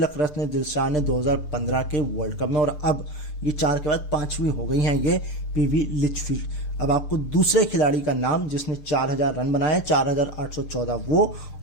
रत्न दिलशान ने 2015 के वर्ल्ड कप में। और अब ये 4 के बाद 5वीं हो गई हैं ये PV लिचफील्ड। अब आपको दूसरे खिलाड़ी का नाम जिसने 4000 रन बनाए, 4814 वो,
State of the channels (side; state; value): right; late; 6.7 ms